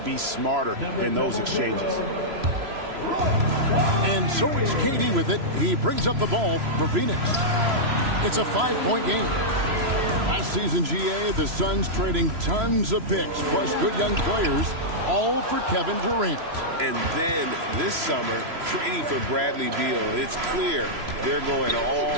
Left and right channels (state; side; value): late; left; 3.0 ms